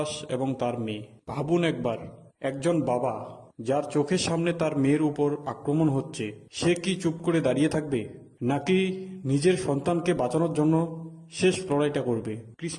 এবং তার মেয়ে। ভাবুন একবার, একজন বাবা যার চোখের সামনে তার মেয়ের উপর আক্রমণ হচ্ছে, সে কি চুপ করে দাঁড়িয়ে থাকবে, নাকি নিজের সন্তানকে বাঁচানোর জন্য শেষ লড়াইটা করবে?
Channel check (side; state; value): both; identical; correlation 1.00